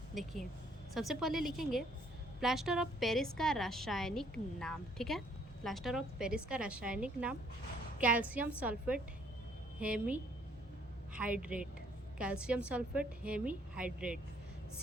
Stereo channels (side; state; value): both; normal; correlation 0.64